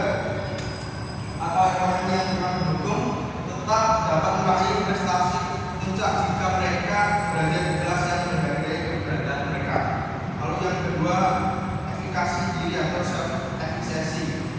atau orang yang kurang mendukung tetap dapat meraih prestasi puncak jika mereka berada di kelas yang menghargai keberadaan mereka. Lalu yang kedua, efikasi diri atau self efficacy,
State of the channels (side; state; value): both; identical; correlation 1.00